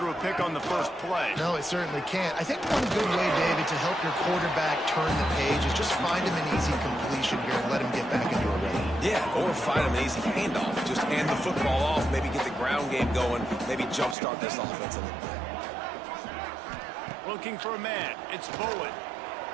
a pick on the first play. No, it certainly can't. I think one good way, David, to help your quarterback turn the page is just find him an easy completion here and let him get back into a rhythm. Yeah, or find him an easy handoff. Just hand the football off, maybe get the ground game going, maybe jumpstart this offense a little bit. Looking for a man. It's Bowen.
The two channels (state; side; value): drops out; left; at 14.2 s